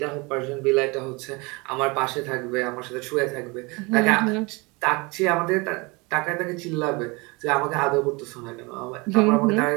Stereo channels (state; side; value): quieter; left; 26.7 dB